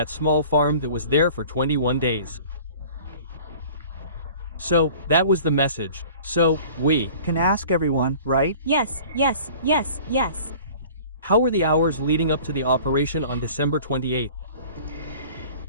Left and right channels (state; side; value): inverted; both; correlation -0.45